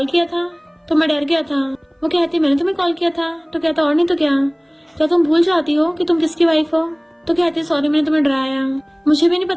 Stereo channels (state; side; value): identical; both; correlation 1.00